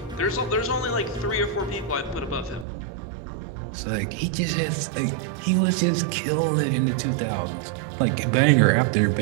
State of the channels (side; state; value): left; drops out; at 2.7 s